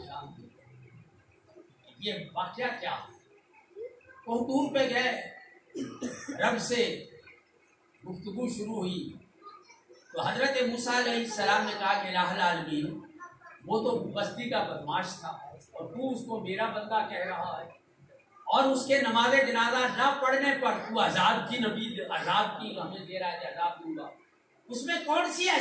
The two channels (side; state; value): both; identical; correlation 1.00